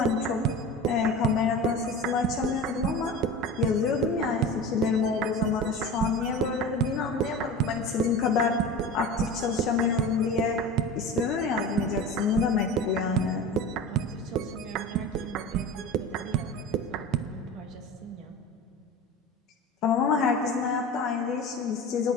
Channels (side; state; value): both; normal; correlation 0.32